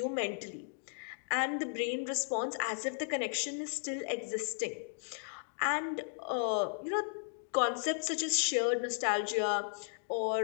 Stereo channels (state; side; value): silent; right; digital silence